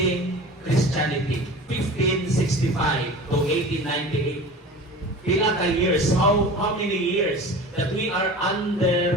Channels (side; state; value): both; normal; correlation 0.37